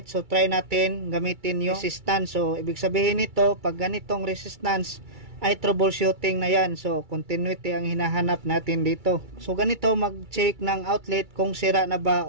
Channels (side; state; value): left; late; 2.3 ms